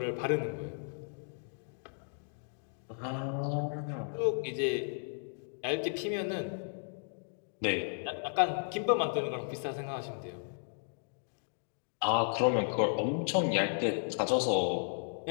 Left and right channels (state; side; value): silent; right; digital silence